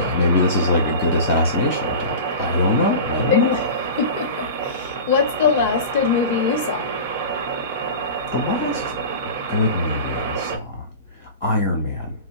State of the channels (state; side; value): inverted; both; correlation -0.32